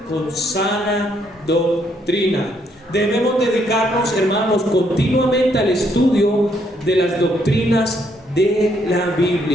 Con sana doctrina. Debemos dedicarnos, hermanos, continuamente al estudio de las doctrinas de la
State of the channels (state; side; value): normal; both; correlation 0.71